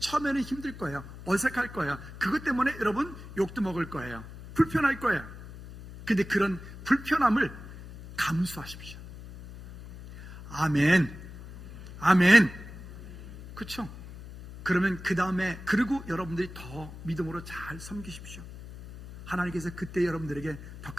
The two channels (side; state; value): left; noise; hum, 14 dB below the sound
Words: 힘들 거예요. 어색할 거예요. 그것 때문에 여러분 욕도 먹을 거예요. 불편할 거예요. 근데 그런 불편함을 감수하십시오. 아멘. 아멘. 그렇죠? 그러면 그 다음에, 그리고 여러분들이 더 믿음으로 잘 섬기십시오. 하나님께서 그때 여러분들에게 더